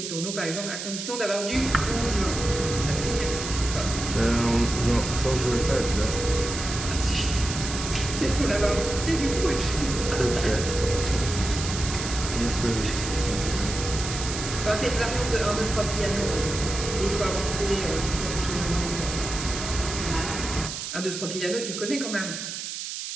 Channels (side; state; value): right; noise; hiss, 6 dB below the sound